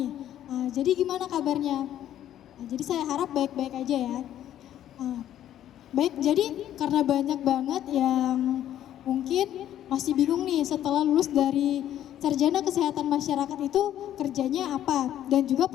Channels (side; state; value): right; quieter; 11.6 dB